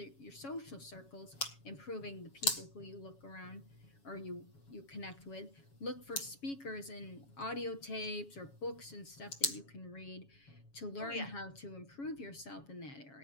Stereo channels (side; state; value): right; late; 7.2 ms